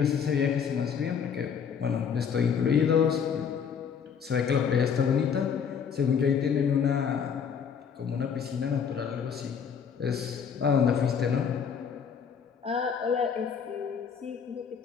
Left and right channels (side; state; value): right; quieter; 7.1 dB